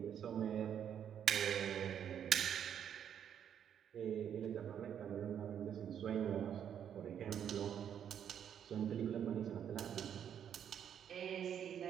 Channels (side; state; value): left; quieter; 8.9 dB